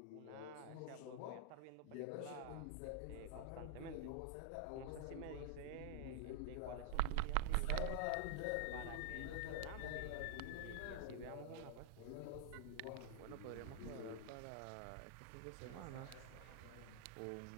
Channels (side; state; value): both; different; correlation -0.01